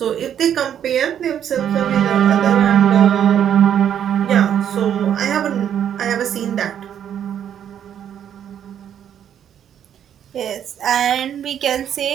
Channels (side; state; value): left; quieter; 9.4 dB